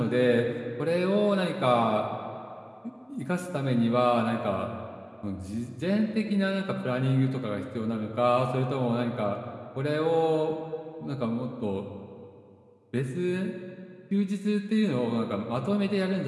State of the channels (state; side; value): identical; both; correlation 1.00